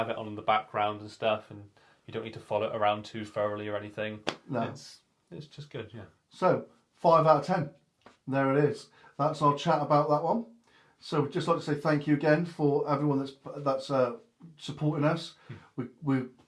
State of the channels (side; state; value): both; identical; correlation 1.00